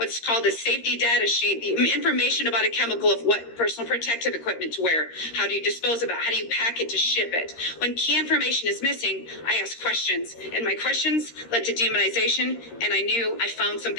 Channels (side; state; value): right; late; 13 ms